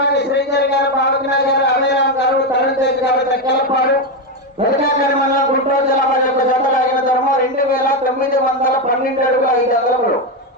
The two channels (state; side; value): normal; both; correlation 0.09